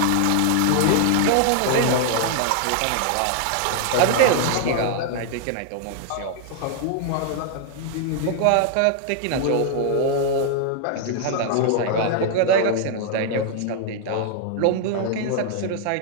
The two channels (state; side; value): different; both; correlation -0.01